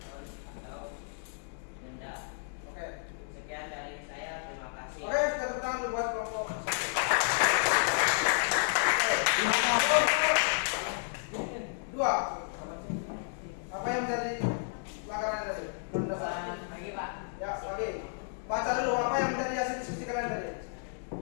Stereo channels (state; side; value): silent; right; digital silence